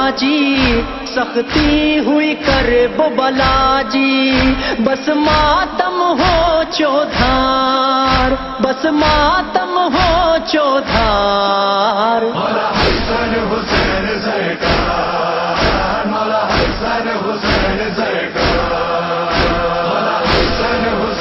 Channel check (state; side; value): identical; both; correlation 1.00